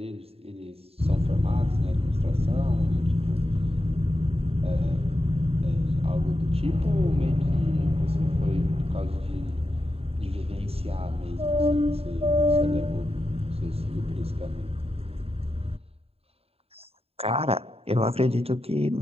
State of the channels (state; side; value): late; left; 0.29 ms